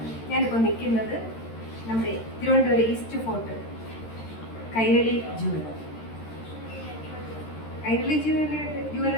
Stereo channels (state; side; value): late; right; 13 ms